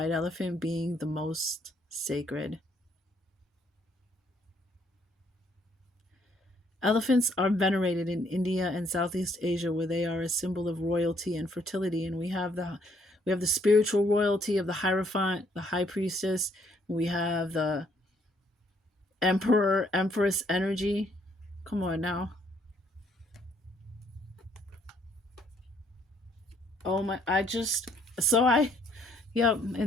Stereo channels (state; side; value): normal; both; correlation 0.67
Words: elephant being the most sacred. Elephants are venerated in India and Southeast Asia, where they are a symbol of royalty and fertility. And we have the spiritual royalty of the Hierophant, the High Priestess. We have the Emperor, Empress energy. Come on now. Oh my! Yep.